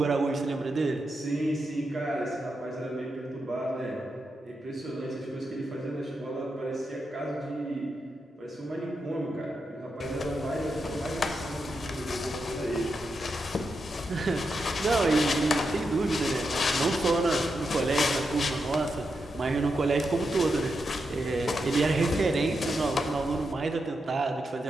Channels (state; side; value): normal; both; correlation 0.86